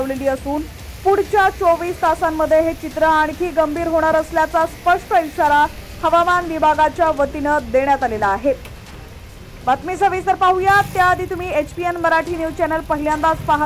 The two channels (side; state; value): both; identical; correlation 1.00